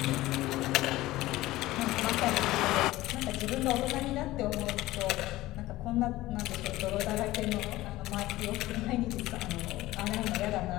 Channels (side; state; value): right; quieter; 17.4 dB